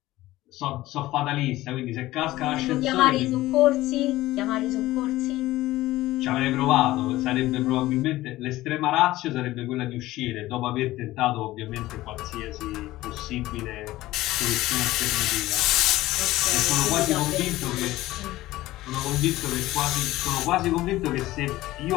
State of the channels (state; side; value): quieter; right; 16.8 dB